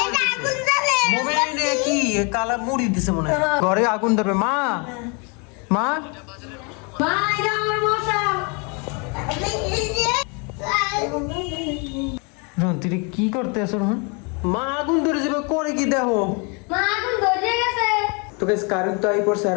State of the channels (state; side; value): quieter; right; 33.2 dB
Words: মোমে কি কালা মুড়ি দিছে মনে হয়। ঘরে আগুন ধরবে। মা রন তুই কি করতে আছো রন? মা আগুন ধরে যাবে করে কি দেখো? তো গাইস কারেন্ট তো আই পড়ছে